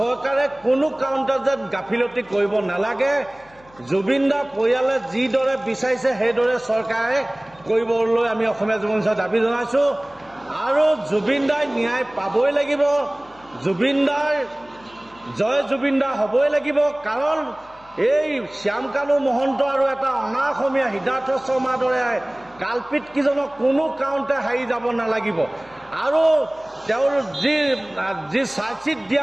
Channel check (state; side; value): noise; left; hum, 27 dB below the sound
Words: কোনো কাৰণতে যেন গাফিলতি কৰিব নালাগে। জুবিন দাৰ পৰিয়ালে যিদৰে বিচাৰিছে সেইদৰে চৰকাৰে কৰিবলৈ আমি অসমীয়া যুৱ মঞ্চই দাবী জনাইছোঁ। আৰু জুবিন দাই ন্যায় পাবই লাগিব, জুবিন দাৰ জয় জুবিন দা হ'বই লাগিব, কাৰণ এই শ্যামকানু মহন্ত আৰু এটা অনা অসমীয়া সিদ্ধাৰ্থ শৰ্মাৰ দৰে কালপিত কিজনক কোনো কাৰণতে হাৰি যাব নালাগিব। আৰু তেওঁৰ যি চাৰ্জশ্বিট